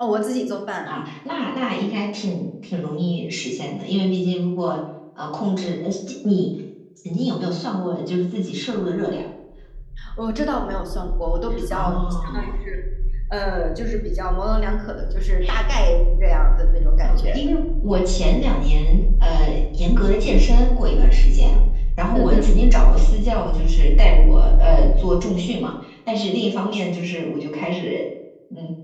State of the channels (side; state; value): both; identical; correlation 1.00